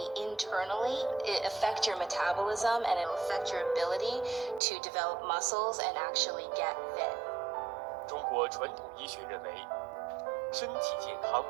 internally, it affects your metabolism and it'll affect your ability to develop muscles and actually get fit. 中国传统医学认为，身体健康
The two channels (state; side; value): drops out; left; at 4.6 s